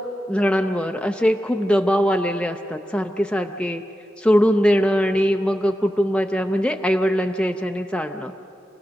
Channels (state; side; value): normal; both; correlation 0.90